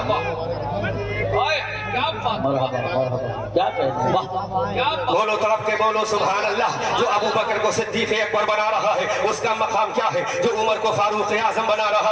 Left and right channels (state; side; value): identical; both; correlation 1.00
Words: واہ۔ ओए, क्या बात, मरहबा मरहबा, क्या कहते हैं, वाह, क्या बात। बोलो तड़प के बोलो सुभान अल्लाह। जो अबू बकर को सिद्दीक अकबर बना रहा है उसका मकाम क्या है? जो उमर को फारूक आजम बना रहा